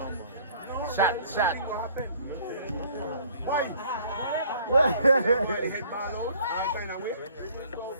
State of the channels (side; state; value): both; inverted; correlation -0.56